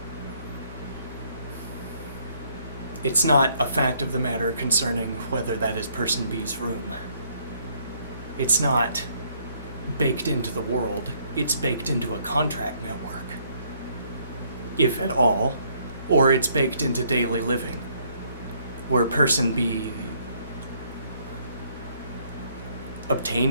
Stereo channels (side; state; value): both; inverted; correlation -0.67